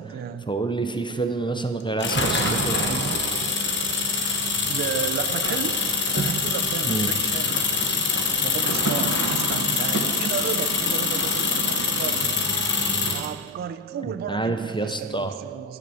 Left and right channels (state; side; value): normal; both; correlation 0.11